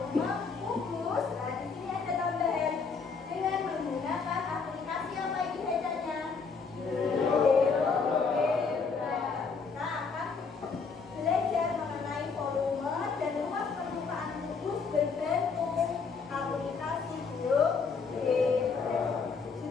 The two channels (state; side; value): quieter; right; 5.1 dB